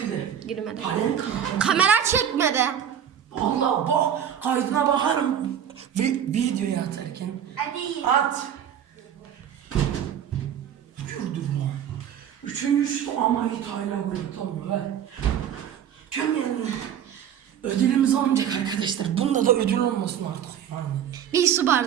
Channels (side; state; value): left; quieter; 9.2 dB